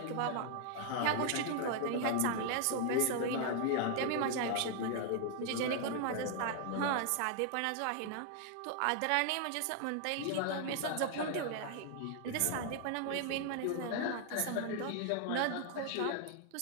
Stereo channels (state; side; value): different; both; correlation 0.00